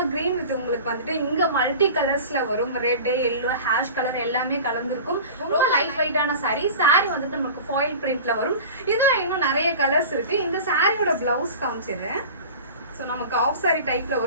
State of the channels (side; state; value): both; inverted; correlation -0.37